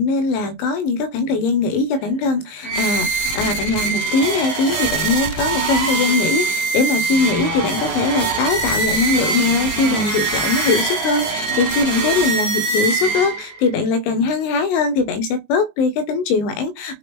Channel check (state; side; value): late; right; 19 ms